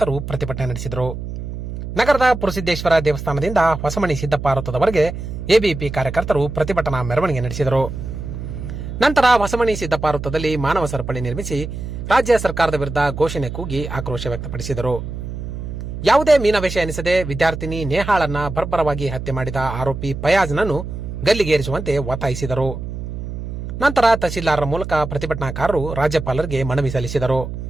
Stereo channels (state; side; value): noise; right; hum, 7 dB below the sound